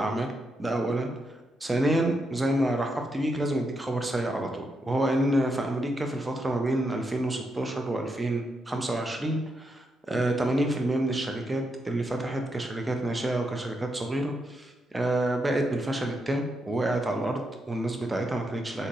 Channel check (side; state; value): both; normal; correlation 0.82